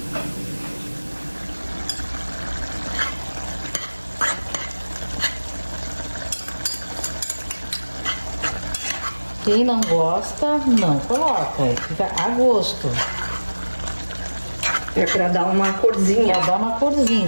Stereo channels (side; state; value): both; inverted; correlation -1.00